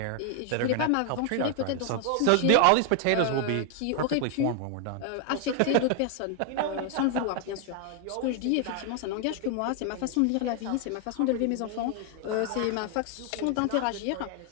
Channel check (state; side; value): different; both; correlation 0.00